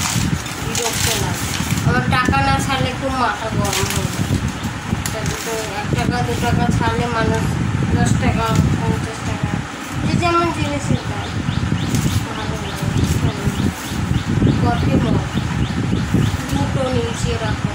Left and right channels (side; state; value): both; identical; correlation 1.00